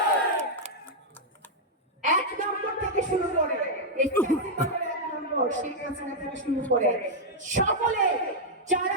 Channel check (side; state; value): both; normal; correlation -0.04